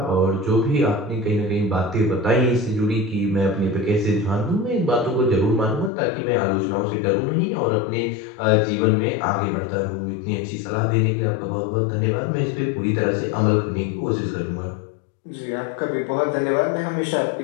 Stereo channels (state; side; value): drops out; right; at 5.9 s